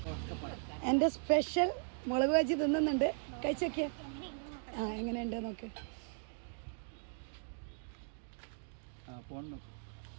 എൻ്റെ സ്പെഷ്യൽ മുളക് ബജി തിന്നുന്നുണ്ട്. കഴിച്ചൊക്കെ എങ്ങനെയുണ്ട് നോക്ക്.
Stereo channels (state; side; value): silent; left; digital silence